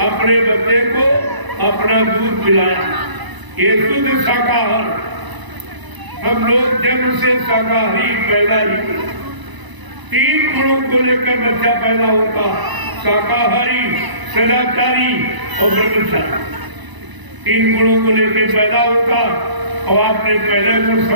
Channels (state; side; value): late; left; 1.0 ms